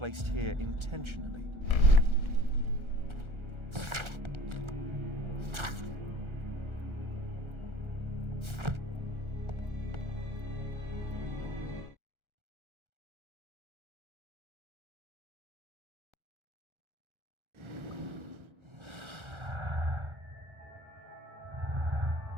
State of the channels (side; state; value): left; late; 1.4 ms